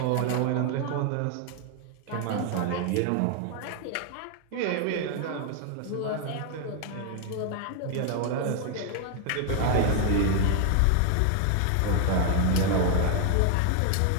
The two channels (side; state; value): both; different; correlation 0.00